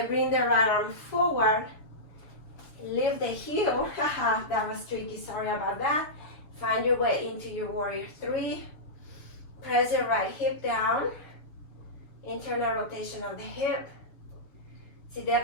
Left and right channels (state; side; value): late; right; 7.0 ms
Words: bring the right arm forward, lift the heel. Haha, that was tricky, sorry about that. Find your way into your warrior three. Press the right hip down, internal rotation of the hip. See